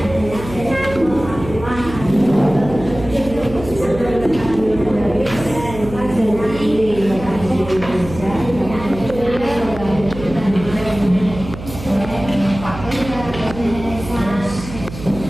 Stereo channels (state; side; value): noise; right; hum, 12 dB below the sound